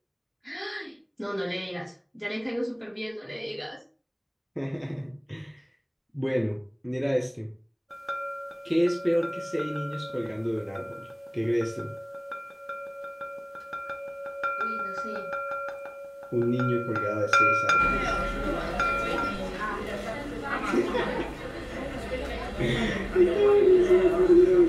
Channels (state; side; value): identical; both; correlation 1.00